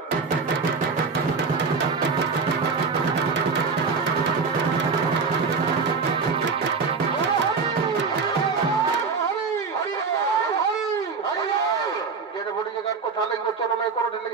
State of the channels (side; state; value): left; quieter; 4.9 dB